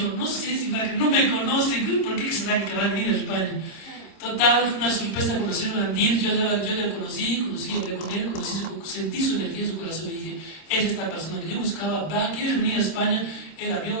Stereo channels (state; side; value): late; right; 26 ms